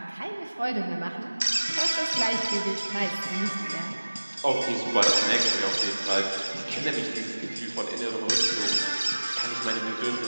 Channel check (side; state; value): both; inverted; correlation -1.00